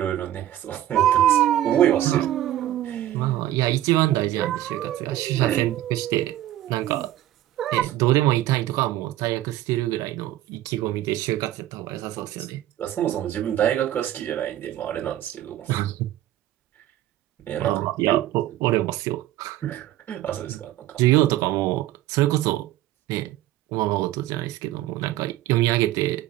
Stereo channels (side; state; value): left; quieter; 13.5 dB